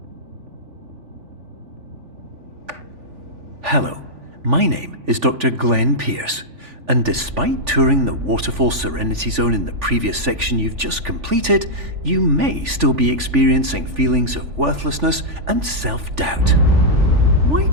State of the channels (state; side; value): late; left; 3.4 ms